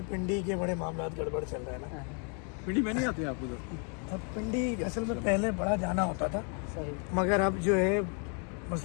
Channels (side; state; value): right; quieter; 39.5 dB